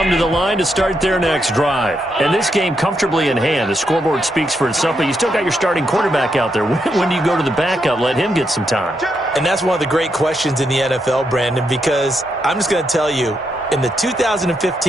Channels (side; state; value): both; normal; correlation 0.81